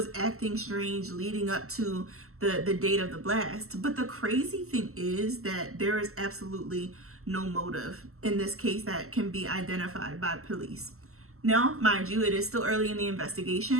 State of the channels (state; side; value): late; left; 0.63 ms